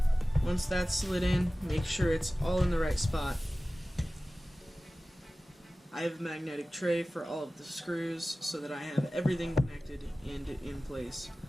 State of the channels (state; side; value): normal; both; correlation 0.97